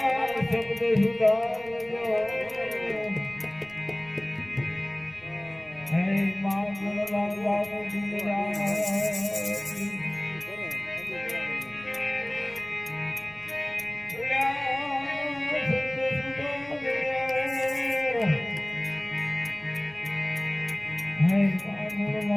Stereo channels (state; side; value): noise; right; rumble, 24 dB below the sound